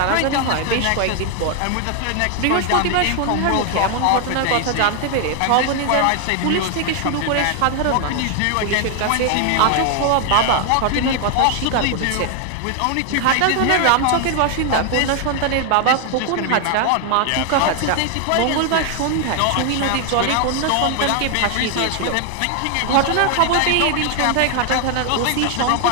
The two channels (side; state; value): both; different; correlation 0.00